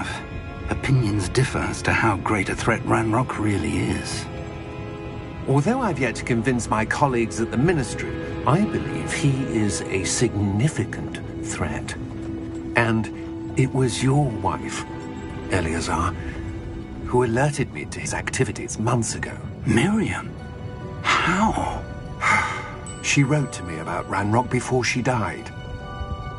Opinions differ as to how great a threat Ranrock really is. Although I've yet to convince my colleagues at the Ministry, I believe he is a significant threat. And it was your wife, Eleazar, who alerted me to his activities months ago. Miriam? How? She wrote to me about Ranrock before she died,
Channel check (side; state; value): both; identical; correlation 1.00